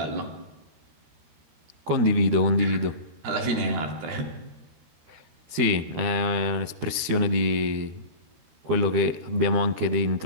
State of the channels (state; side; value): late; left; 13 ms